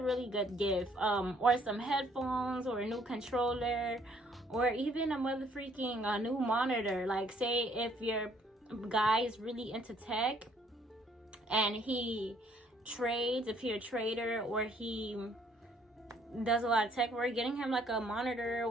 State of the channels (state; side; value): normal; both; correlation 0.64